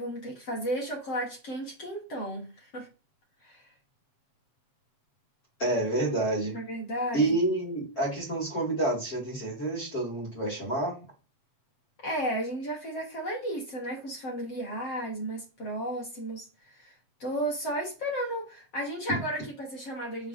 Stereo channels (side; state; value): right; late; 7.6 ms